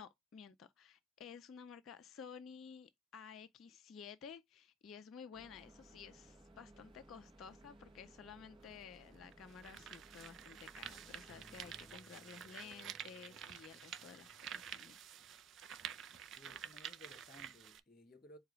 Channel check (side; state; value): both; normal; correlation 0.41